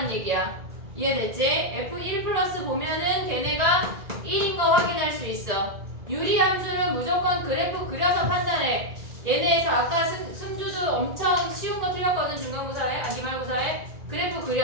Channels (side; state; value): left; late; 2.0 ms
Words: 얘기야. 이해됐지? f1 플러스 보면은 걔네가 1인 거 확인할 수 있어. 유리 함수는 무조건 그래프 그려서 판단해. 얘네에서 아까 승주도 엄청 쉬운 거 틀렸거든. 중간고사에, 기말고사에. 그래프